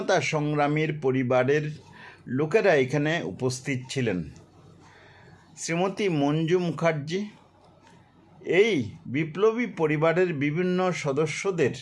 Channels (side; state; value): both; identical; correlation 1.00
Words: সংগ্রামীর পরিবারের লোকেরা এখানে উপস্থিত ছিলেন। শ্রীমতী মঞ্জু মুখার্জি এই বিপ্লবী পরিবারের বিভিন্ন সদস্যদের